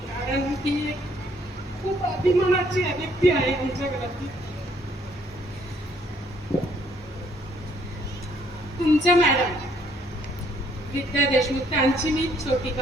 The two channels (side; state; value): both; normal; correlation 0.66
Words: कारण ती खूप अभिमानाची व्यक्ती आहे आमच्या घरातली. तुमच्या मॅडम विद्या देशमुख त्यांची मी छोटी